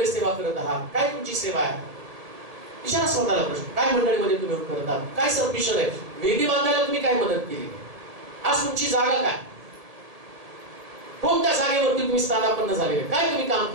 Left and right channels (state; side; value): late; left; 1.7 ms